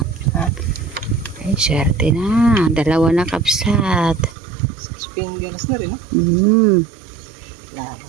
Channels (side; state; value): left; drops out; at 4.4 s